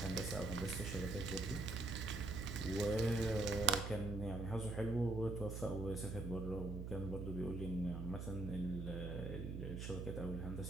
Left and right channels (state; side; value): noise; right; hum, 5 dB below the sound